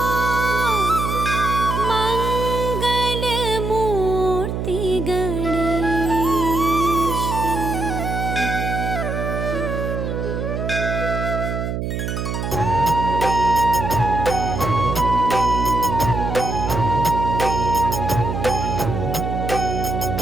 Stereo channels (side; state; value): right; noise; hum, 3 dB below the sound